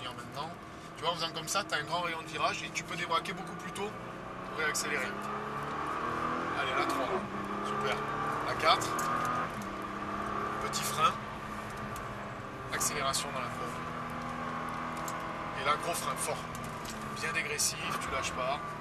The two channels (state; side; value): identical; both; correlation 1.00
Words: maintenant. Tu vois, en faisant comme ça, tu as un grand rayon de virage et tu peux débraquer beaucoup plus tôt pour réaccélérer. Allez, la 3. Super. La 4. Petit frein. Accélération dans la courbe. Et là, gros frein fort. Bien dégressif, tu lâches pas.